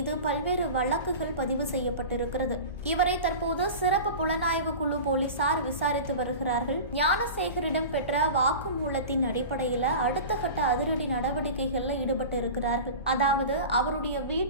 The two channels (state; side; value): inverted; both; correlation -0.33